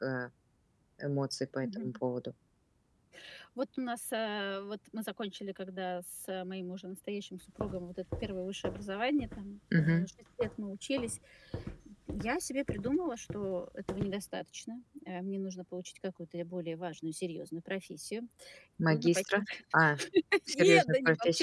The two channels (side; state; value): both; identical; correlation 1.00